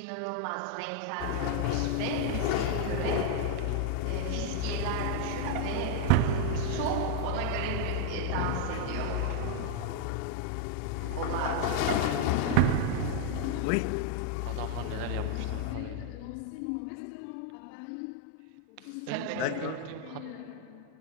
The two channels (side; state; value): both; different; correlation 0.00